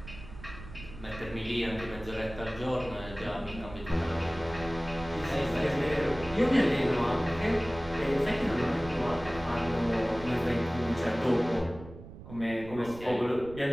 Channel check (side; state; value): right; noise; rumble, 15 dB below the sound